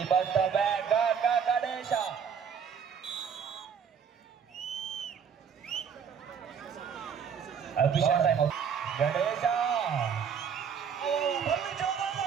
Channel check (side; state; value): left; quieter; 7.2 dB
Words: ಬಂದ ಬ್ಯಾಗ್ ಗಣೇಶ. ಅಭಿಷೇಕ್ ಗಣೇಶ